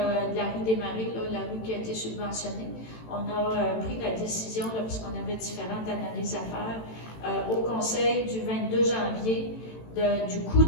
la rue des Marais, là, la rue qui a été subventionnée. On a pris la décision, là, puisqu'on avait différentes analyses à faire, au conseil du 22 janvier du coût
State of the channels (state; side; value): late; right; 18 ms